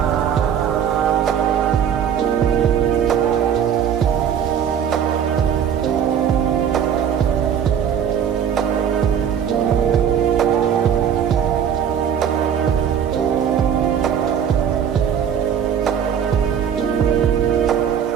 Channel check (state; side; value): quieter; left; 8.5 dB